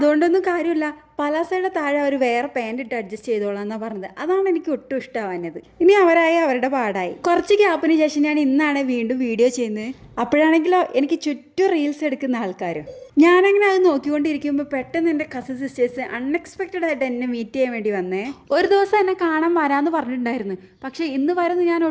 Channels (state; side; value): identical; both; correlation 1.00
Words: കാര്യമില്ല. പലാസയുടെ താഴെ അവർ വേറെ പാൻറ് ഇട്ട് അഡ്ജസ്റ്റ് ചെയ്തോളാം എന്നാ പറഞ്ഞത്. അതാണ് എനിക്ക് ഒട്ടും ഇഷ്ടമാവുന്നത്. ഇനി അവരായി അവരുടെ പാടായി. കുറച്ച് ഗ്യാപ്പിന് ശേഷം ഞാൻ ഇന്നാണ് വീണ്ടും വീഡിയോ ചെയ്യുന്നത്. അപ്പോഴാണെങ്കിലോ എനിക്ക് ചുറ്റും റീൽസ് എടുക്കുന്ന ആൾക്കാരും. ഞാനങ്ങനെ അത് നോക്കിക്കൊണ്ടിരിക്കുമ്പോൾ പെട്ടെന്ന് എൻ്റെ കസിൻ സിസ്റ്റേഴ്സ് അൺഎക്സ്പെക്റ്റഡ് ആയിട്ട് എന്നെ മീറ്റ് ചെയ്യാൻ വേണ്ടി വന്നേ. ഒരു ദിവസം എന്നെ കാണാൻ വരാമെന്ന് പറഞ്ഞിട്ടുണ്ടായിരുന്നു. പക്ഷേ ഇന്ന് വരുന്ന ഞാൻ